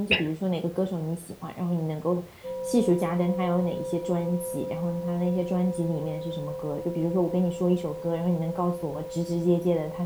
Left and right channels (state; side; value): identical; both; correlation 1.00